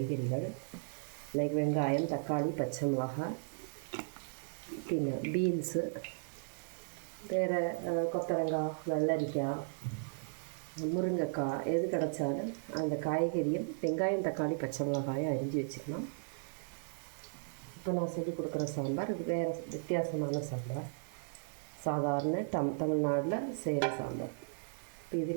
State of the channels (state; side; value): silent; left; digital silence